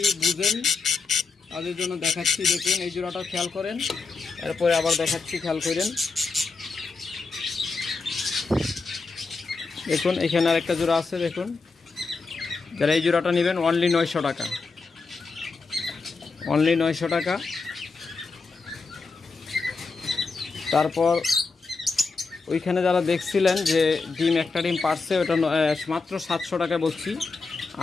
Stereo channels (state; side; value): quieter; right; 4.3 dB